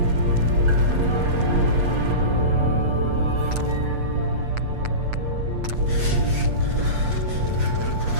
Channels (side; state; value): left; late; 8.1 ms